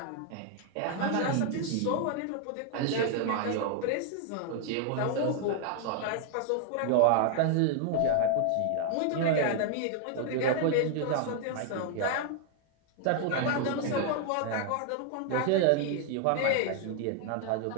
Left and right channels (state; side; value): different; both; correlation 0.00